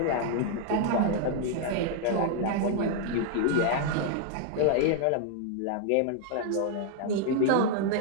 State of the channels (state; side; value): different; both; correlation -0.01